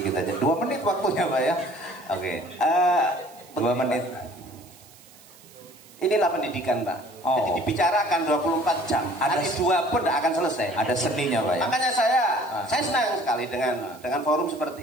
aja. 2 menit waktunya Pak ya. Oke. 2 menit. Inilah pendidikan Pak. Jadi dibicarakan 24 jam. Ada 2 pun tidak akan selesai. Ada seninya Pak ya. Makanya saya senang sekali dengan forum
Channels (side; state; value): right; noise; hiss, 24 dB below the sound